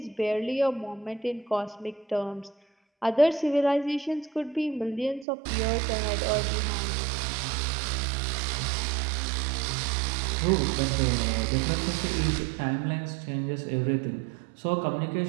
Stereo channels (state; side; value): drops out; left; at 5.2 s